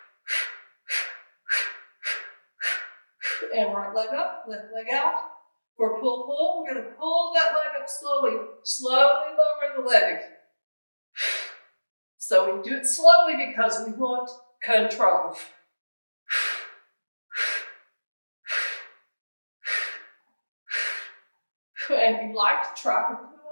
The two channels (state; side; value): inverted; both; correlation -1.00